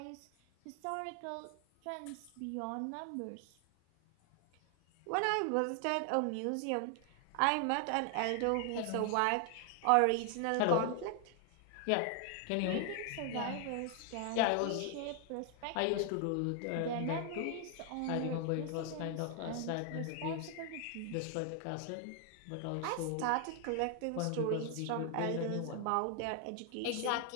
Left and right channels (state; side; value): different; both; correlation 0.00